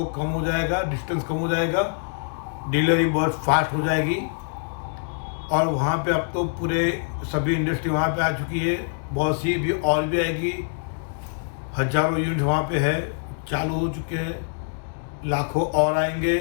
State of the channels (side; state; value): right; silent; digital silence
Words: कम हो जाएगा, डिस्टेंस कम हो जाएगा। डिलीवरी बहुत फास्ट हो जाएगी। और वहाँ पे अब तो पूरे सभी इंडस्ट्री वहाँ पे आ चुकी है। बहुत सी भी और भी आएगी। हजारों यूनिट वहाँ पे है, चालू हो चुके हैं। लाखों और आएंगे।